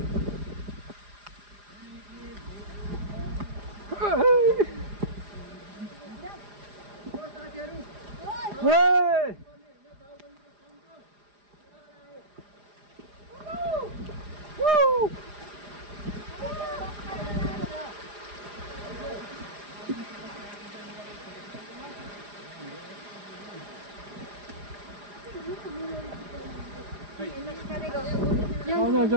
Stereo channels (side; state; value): left; late; 4.9 ms